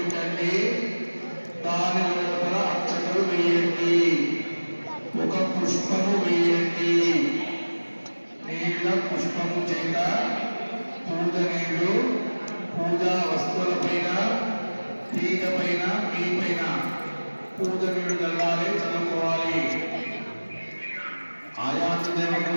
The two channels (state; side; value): inverted; both; correlation -1.00